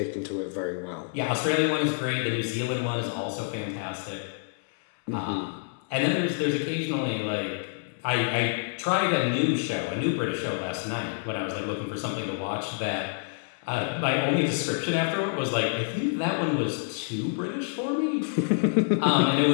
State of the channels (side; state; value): right; silent; 60 dB below the other